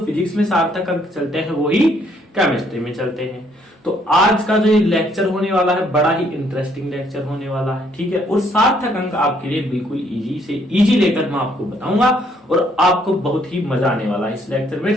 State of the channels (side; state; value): both; normal; correlation 0.68